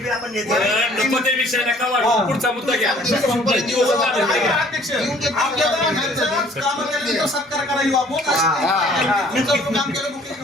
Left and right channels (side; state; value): both; normal; correlation 0.56